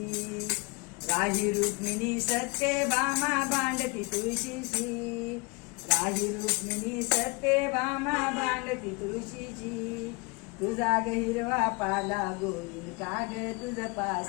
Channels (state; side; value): quieter; right; 28.5 dB